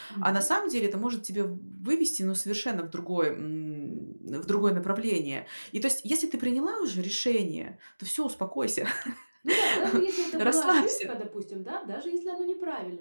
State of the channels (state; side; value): inverted; both; correlation -1.00